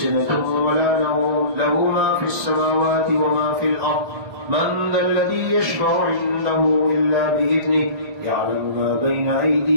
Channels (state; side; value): late; left; 1.9 ms